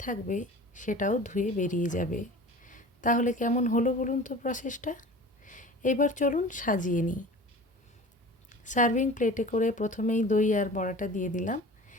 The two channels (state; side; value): normal; both; correlation 0.40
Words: থাকবে, সেটাও ধুয়ে বেরিয়ে যাবে। তাহলে কেমন হলো বলুন তো প্রসেসটা। এবার চলুন সাজিয়ে নিই। সার্ভিং প্লেটে করে প্রথমেই দই আর বড়াটা দিয়ে দিলাম।